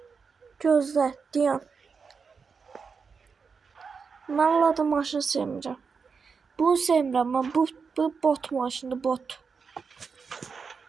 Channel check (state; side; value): quieter; left; 5.4 dB